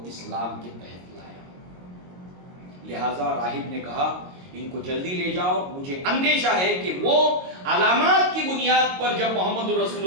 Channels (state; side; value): late; left; 22 ms